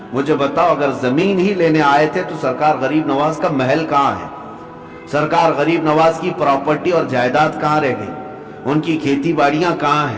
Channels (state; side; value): identical; both; correlation 1.00